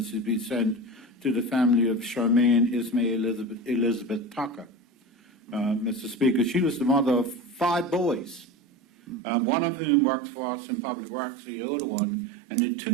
be sent to the family of Charmaine Ismail Elizabeth Tucker. Mr. Speaker, she was the mother of 5 boys, one of whom works for us in public works, the older one, and the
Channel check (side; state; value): left; drops out; at 9.2 s